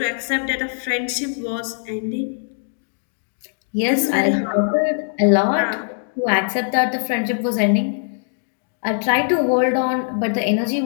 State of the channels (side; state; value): right; silent; digital silence